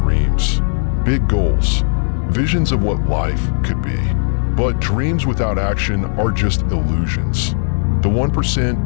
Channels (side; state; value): right; silent; 68 dB below the other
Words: big goals, visions of what life could be. But dreams without action are just illusions. The